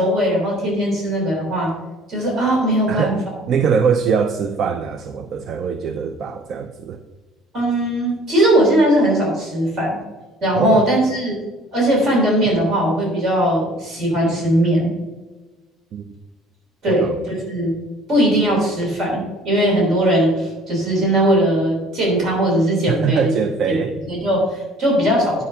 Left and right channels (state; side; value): normal; both; correlation 0.52